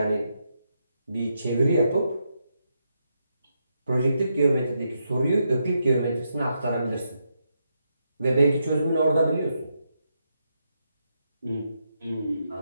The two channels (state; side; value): inverted; both; correlation -0.82